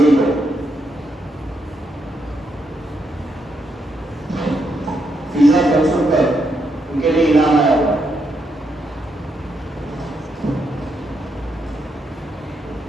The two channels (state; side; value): normal; both; correlation 0.79